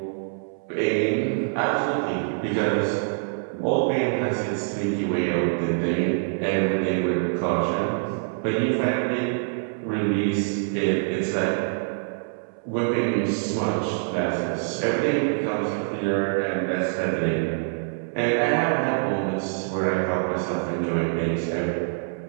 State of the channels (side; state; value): left; silent; 61 dB below the other